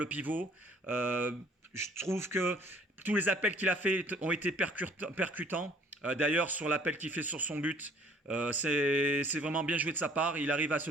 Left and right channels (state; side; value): normal; both; correlation 0.57